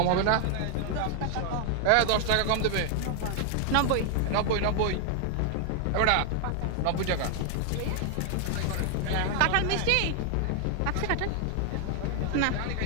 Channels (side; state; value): both; different; correlation 0.00